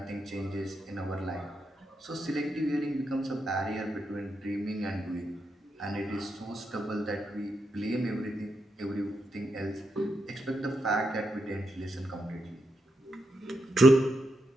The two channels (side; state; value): both; normal; correlation 0.83